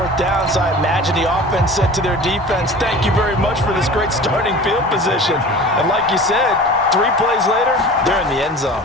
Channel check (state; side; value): normal; both; correlation 0.39